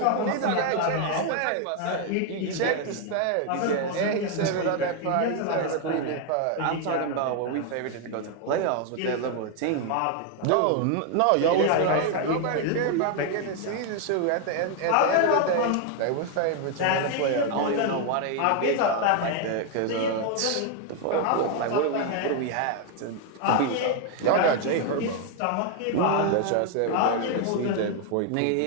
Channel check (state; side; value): different; both; correlation 0.01